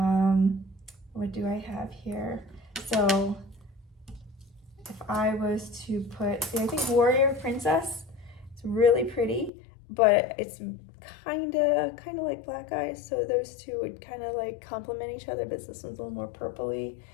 what do I have here? So if I was to put, see, I think Warrior Princess, it's really pretty, but it's kind of like Black Eyes. So those two would kind of like complement each other, but this one's a little more purpley.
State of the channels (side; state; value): right; drops out; at 9.5 s